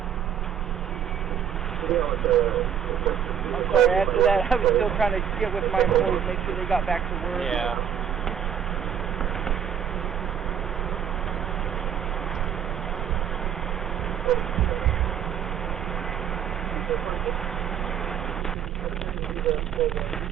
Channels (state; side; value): quieter; left; 8.6 dB